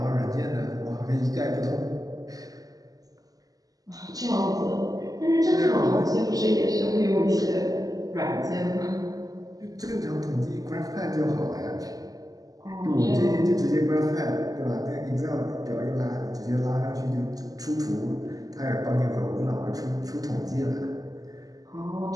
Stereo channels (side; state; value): left; late; 0.17 ms